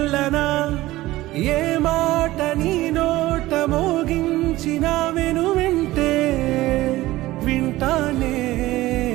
ఏ మాట నీ నోట మోగించిన వింటే వింటానే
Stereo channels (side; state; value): left; quieter; 17.4 dB